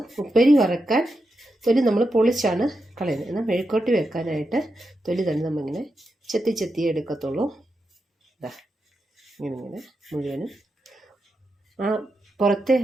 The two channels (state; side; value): normal; both; correlation 0.87